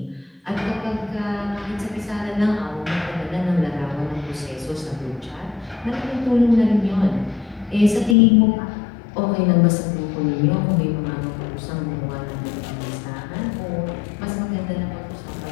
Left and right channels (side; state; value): right; drops out; at 8.2 s